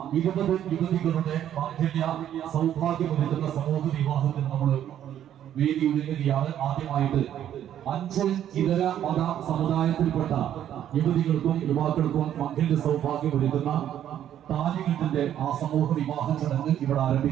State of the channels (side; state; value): left; quieter; 10.7 dB